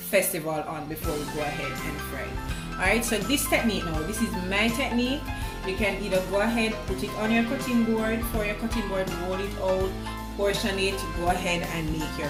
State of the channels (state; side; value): identical; both; correlation 1.00